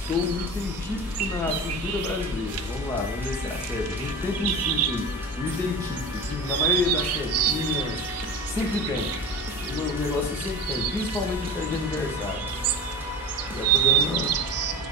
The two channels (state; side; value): normal; both; correlation 0.32